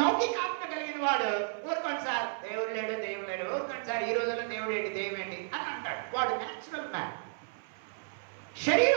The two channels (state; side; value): silent; left; 56 dB below the other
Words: కలిగిన వాడు ఊరుకోండి సార్ దేవుడు లేడు, దేవుడు లేడు, ఊరుకోండి సార్ ఈ రోజుల్లో దేవుడు ఏంటి, దైవం ఏంటి అని అంటాడు. వాడు న్యాచురల్ మ్యాన్. శరీర